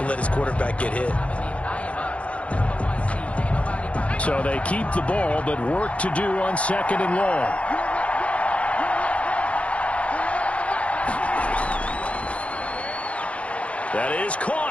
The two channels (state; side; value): late; right; 0.063 ms